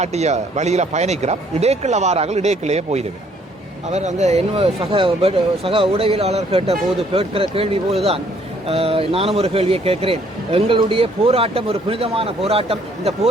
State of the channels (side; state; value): both; normal; correlation 0.64